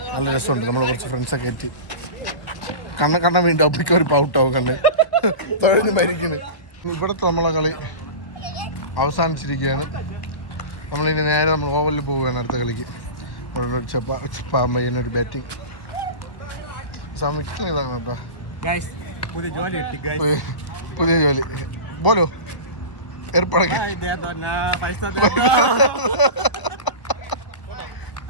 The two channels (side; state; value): right; late; 1.4 ms